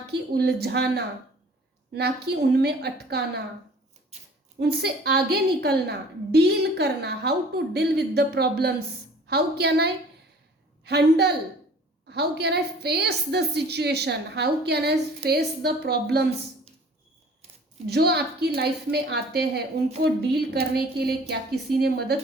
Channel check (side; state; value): both; normal; correlation 0.49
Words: कि उलझाना, ना कि उनमें अटकाना, उनसे आगे निकलना, डील करना, how to deal with the problems, how can I handle, how can I face the situation, how can I face the problems जो आपकी लाइफ में आते हैं, उनको डील करने के लिए क्या किसी ने मदद